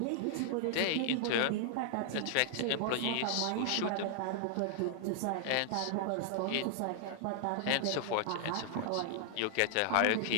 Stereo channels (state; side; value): different; both; correlation 0.00